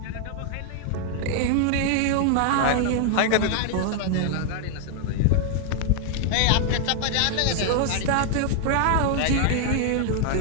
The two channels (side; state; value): both; different; correlation 0.00